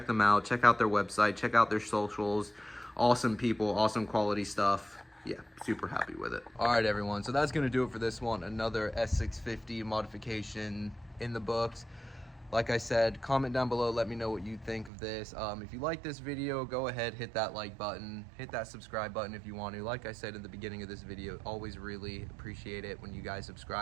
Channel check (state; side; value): drops out; left; at 14.9 s